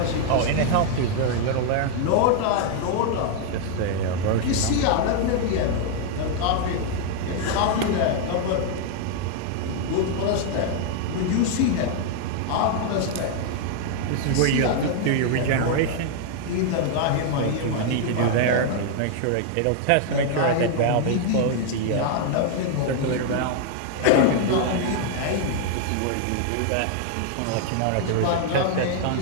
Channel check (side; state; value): both; different; correlation 0.00